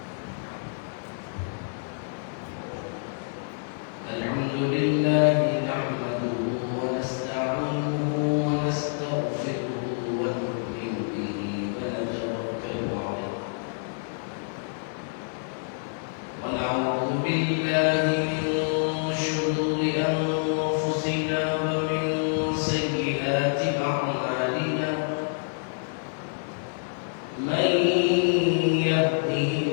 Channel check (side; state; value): right; silent; digital silence